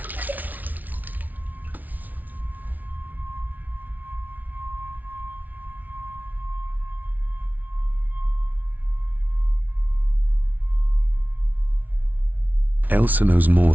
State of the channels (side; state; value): left; late; 0.078 ms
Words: Elsa knows more